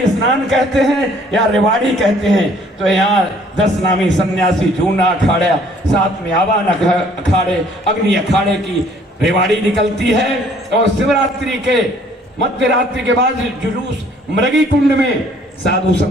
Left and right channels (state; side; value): normal; both; correlation 0.59